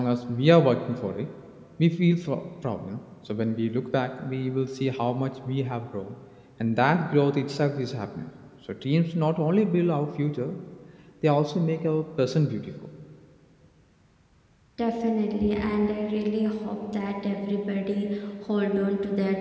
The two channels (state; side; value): identical; both; correlation 1.00